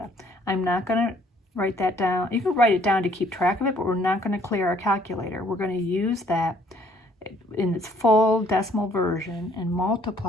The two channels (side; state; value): both; normal; correlation 0.62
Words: I'm not going to write that down. You can write it down to keep track of it, but we're not going to clear our calculator. We're going to use that in its full decimal version and